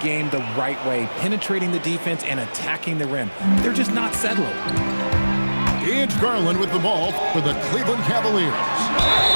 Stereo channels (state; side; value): inverted; both; correlation -1.00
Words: the right way, penetrating the defense and attacking the rim. They're just not settling. It's Garland with the ball for the Cleveland Cavaliers.